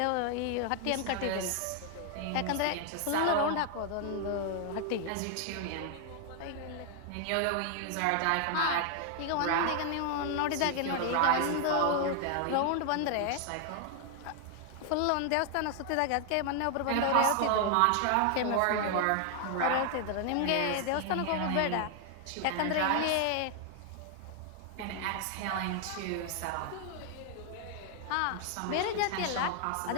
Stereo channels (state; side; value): different; both; correlation 0.00